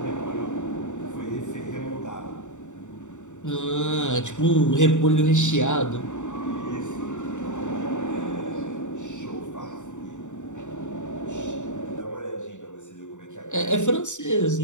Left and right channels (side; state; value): right; late; 0.85 ms